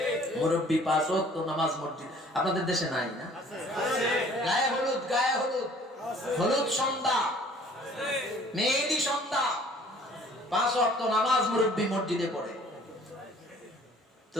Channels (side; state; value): both; normal; correlation 0.54